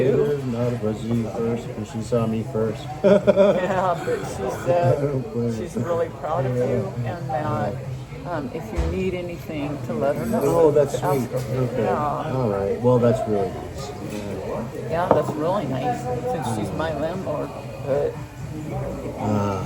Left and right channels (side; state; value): both; identical; correlation 1.00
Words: No, it was you first, because she saw me first. Yeah, but she said don't blame she's her. really proud of you, and that if you need anything, to let her know. Oh, that's To ask sweet. her. Okay. Yeah. All right. Well, that's really nice. Yeah, that's really nice since she's my landlord. But